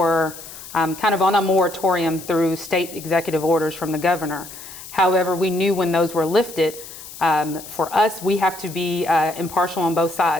kind of on a moratorium through state executive orders from the governor. However, we knew when those were lifted, for us, we have to be impartial on both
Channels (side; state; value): left; noise; hiss, 14 dB below the sound